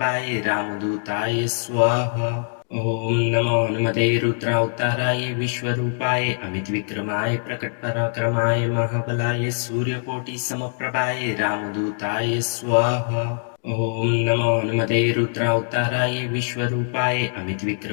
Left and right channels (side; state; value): right; silent; digital silence